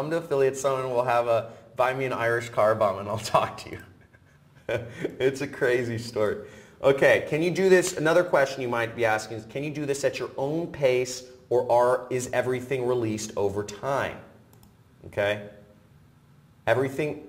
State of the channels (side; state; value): both; identical; correlation 1.00